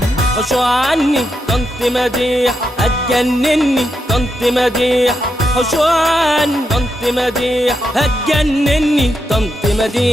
حشوا عني طنط مديح هتجنني، طنط مديح حشوا عني طنط مديح هتجنني، طنط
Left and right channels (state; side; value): normal; both; correlation 0.84